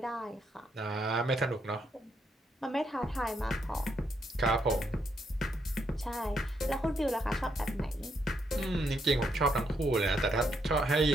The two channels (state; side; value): normal; both; correlation 0.77